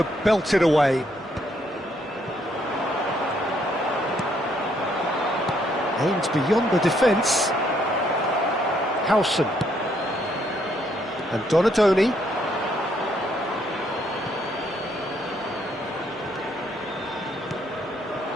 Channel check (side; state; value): both; normal; correlation 0.71